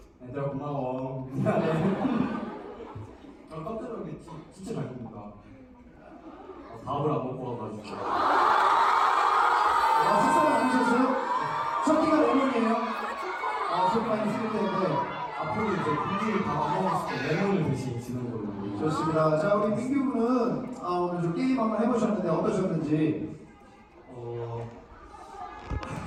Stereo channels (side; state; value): both; identical; correlation 1.00